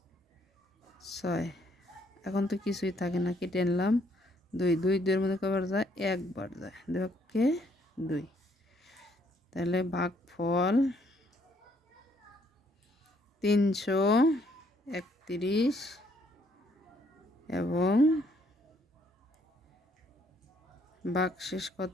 6। এখন তো কিছুই থাকে না, কেটে আনলাম 2, 2 2-এর মধ্যে কয়বার যায়? একবার যায়। 2 কে 2। তাহলে ভাগফল 331 এবং ভাগশেষ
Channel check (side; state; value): both; normal; correlation 0.67